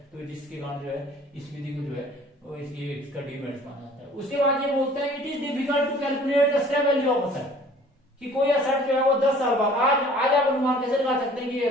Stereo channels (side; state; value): both; normal; correlation 0.51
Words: तो जिसके कारण जो है इस विधि को जो है वो इसका डिमेरिट्स माना जाता है। उसके बाद ये बोलते हैं it is difficult to calculate the scrap value of asset, कि कोई असेट जो है वो 10 साल बाद आज आप अनुमान कैसे लगा सकते हैं कि ये